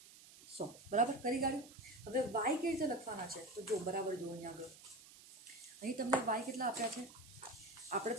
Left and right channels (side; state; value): right; noise; hiss, 19 dB below the sound